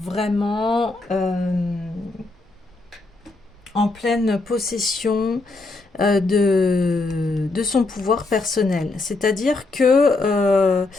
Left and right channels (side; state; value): right; quieter; 3.3 dB